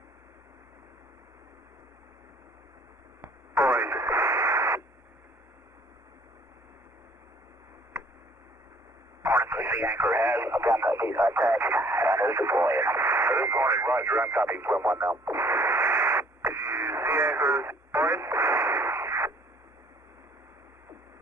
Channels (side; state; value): both; normal; correlation 0.57